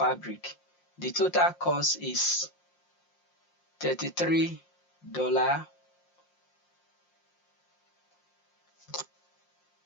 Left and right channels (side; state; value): right; late; 5.6 ms